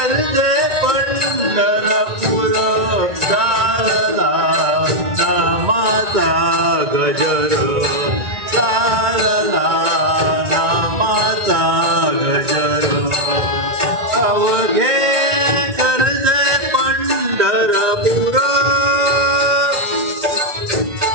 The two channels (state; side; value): late; left; 1.9 ms